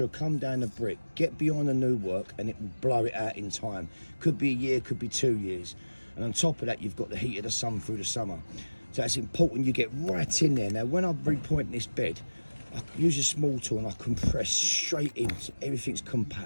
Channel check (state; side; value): inverted; both; correlation -1.00